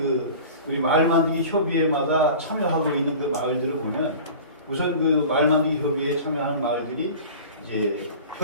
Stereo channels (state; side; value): inverted; both; correlation -0.39